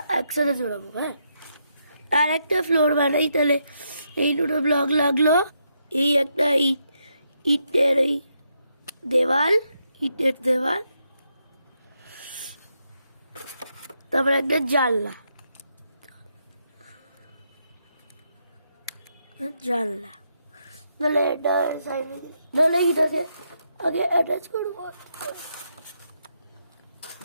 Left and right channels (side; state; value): both; inverted; correlation -0.80